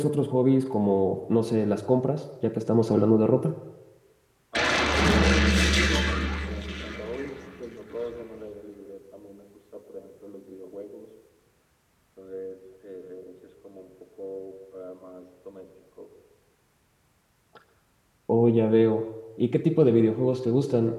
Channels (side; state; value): both; identical; correlation 1.00